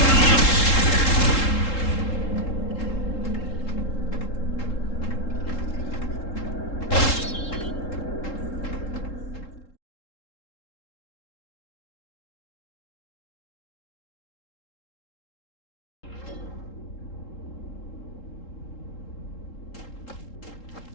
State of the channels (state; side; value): late; right; 3.7 ms